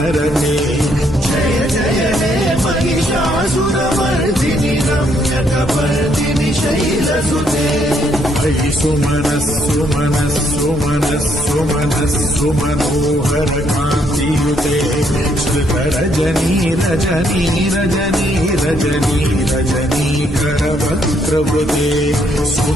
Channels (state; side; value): normal; both; correlation 0.71